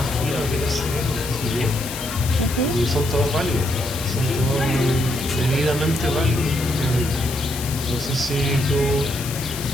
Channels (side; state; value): left; noise; hiss, 9 dB below the sound